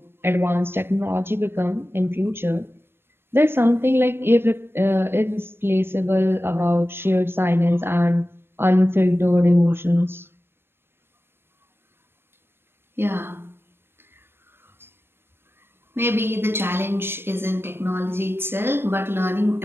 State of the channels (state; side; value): late; left; 0.11 ms